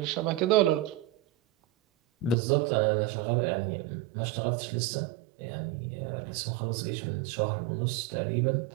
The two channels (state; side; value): drops out; left; at 2.4 s